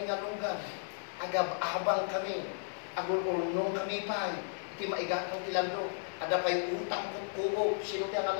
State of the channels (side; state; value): right; silent; digital silence